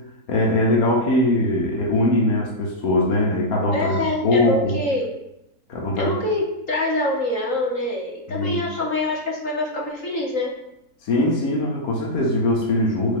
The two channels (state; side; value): late; right; 3.8 ms